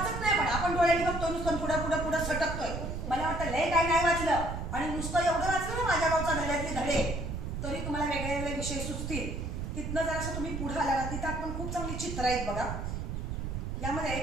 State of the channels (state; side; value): noise; right; rumble, 4 dB below the sound